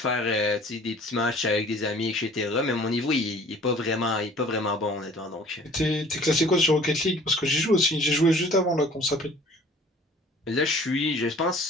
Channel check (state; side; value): normal; both; correlation 0.50